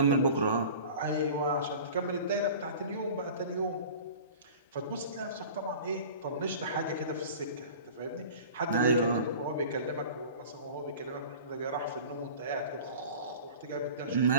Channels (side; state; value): both; inverted; correlation -0.40